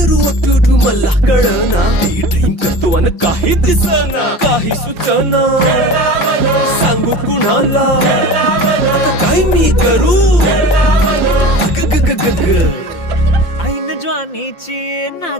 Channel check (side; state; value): right; late; 5.7 ms